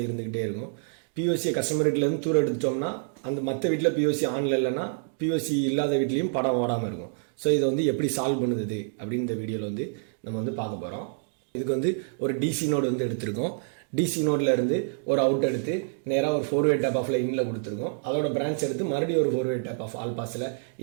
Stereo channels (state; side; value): silent; left; digital silence